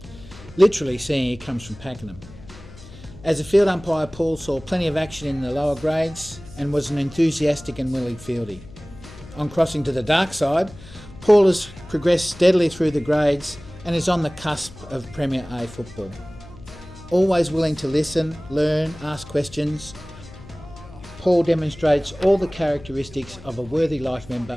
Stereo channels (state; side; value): noise; left; hum, 18 dB below the sound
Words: literally seeing he comes from Pakenham. As a field umpire, Paul saw plenty of action in the lower grades and was an enthusiastic and willing fieldy. On crossing to the dark side, Paul has progressed steadily through the grades and is on the cusp of Premier A football. Always willing to listen, learn, ask questions, Paul demonstrates all the characteristics of a worthy life